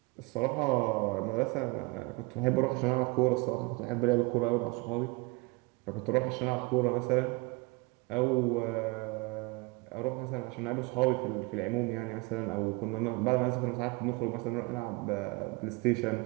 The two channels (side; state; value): left; quieter; 26.1 dB